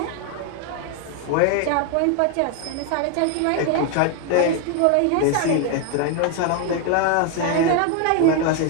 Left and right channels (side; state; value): both; different; correlation 0.01